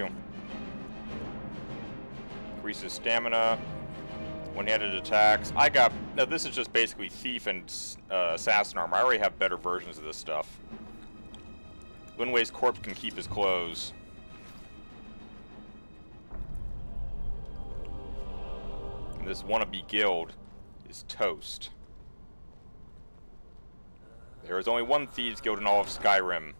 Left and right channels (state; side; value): inverted; both; correlation -1.00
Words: Increases stamina. One-handed attacks. I got... Now, this is just basically Thief and Assassin armor. I already have better versions of this stuff. Linway's corpse can keep his clothes. This wannabe guild is toast. There is only one Thieves Guild in all of Skyrim.